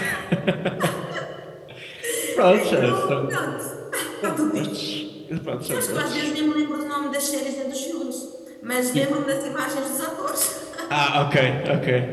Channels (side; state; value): both; identical; correlation 1.00